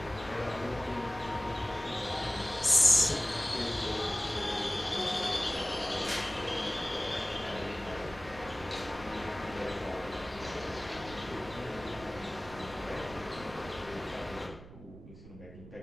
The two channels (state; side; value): noise; right; rumble, 16 dB below the sound